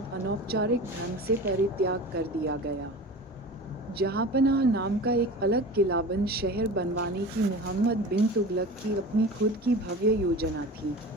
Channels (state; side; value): normal; both; correlation 0.35